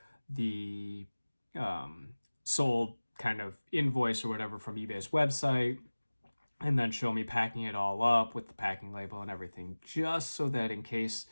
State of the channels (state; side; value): inverted; both; correlation -1.00